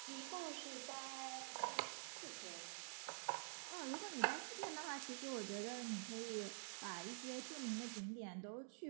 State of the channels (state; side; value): silent; left; digital silence